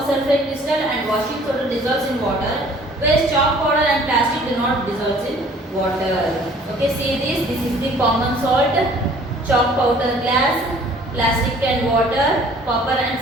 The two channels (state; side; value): normal; both; correlation 0.54